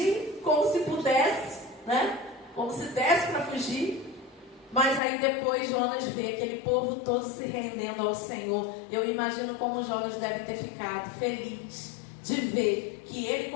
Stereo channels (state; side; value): drops out; right; at 5.0 s